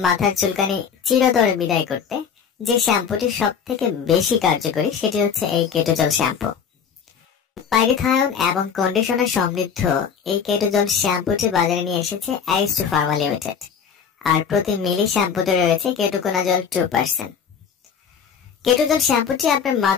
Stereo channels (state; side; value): quieter; right; 7.1 dB